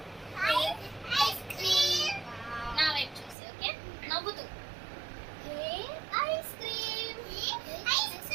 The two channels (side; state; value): left; drops out; at 3.4 s